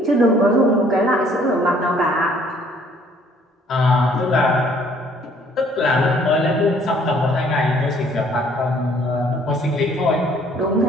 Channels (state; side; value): normal; both; correlation 0.60